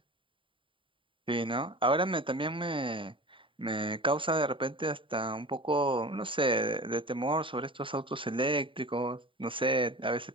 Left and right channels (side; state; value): left; late; 0.25 ms